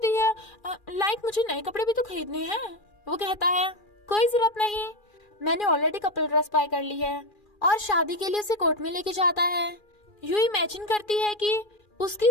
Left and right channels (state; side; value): late; right; 2.4 ms